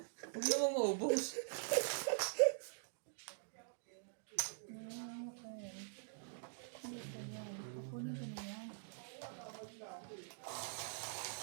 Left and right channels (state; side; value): silent; left; digital silence